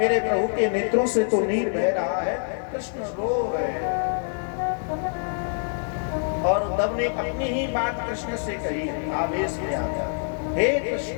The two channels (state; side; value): silent; right; 61 dB below the other